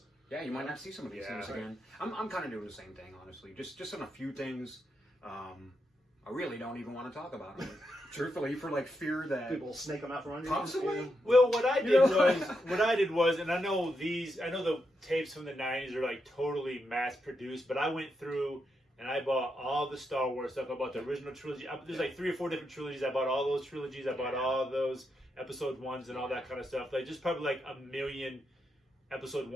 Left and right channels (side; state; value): both; normal; correlation 0.83